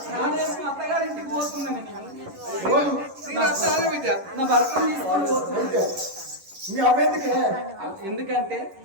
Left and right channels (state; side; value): late; left; 11 ms